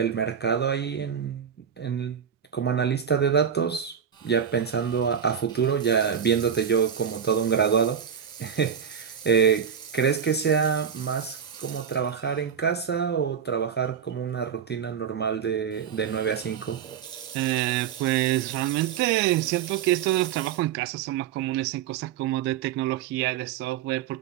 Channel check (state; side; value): quieter; left; 8.0 dB